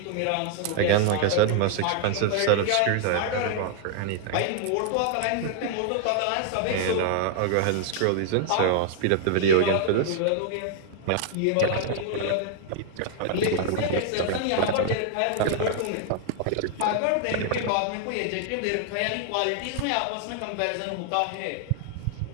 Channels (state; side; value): different; both; correlation 0.00